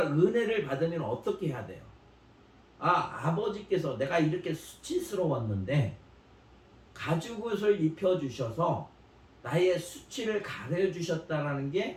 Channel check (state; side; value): identical; both; correlation 1.00